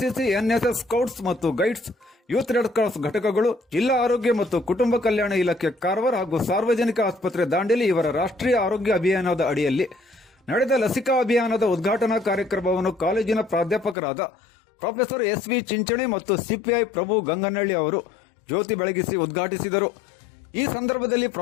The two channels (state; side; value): drops out; right; at 14.0 s